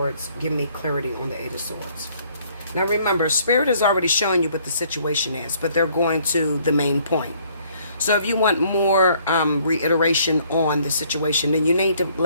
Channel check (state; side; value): inverted; both; correlation -0.63